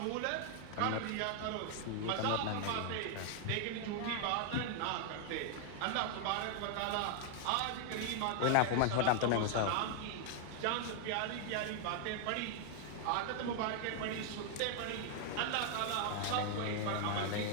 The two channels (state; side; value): different; both; correlation 0.00